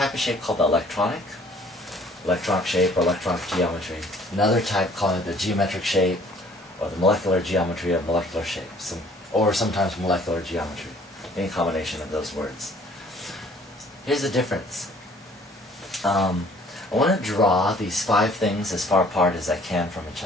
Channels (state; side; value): normal; both; correlation 0.56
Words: of shape called the electronic shape or electronic geometry. Another type called the geometric shape or the molecular geometry or molecular shape, or sometimes molecular geometry. Any combination of those words. Here's the difference. I want to draw these 5 things as far apart as I can from each